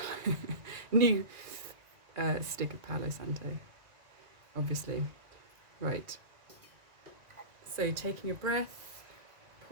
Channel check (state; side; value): late; left; 1.9 ms